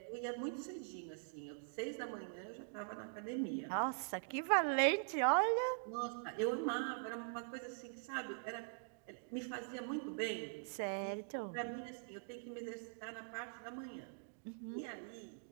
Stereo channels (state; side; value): silent; left; digital silence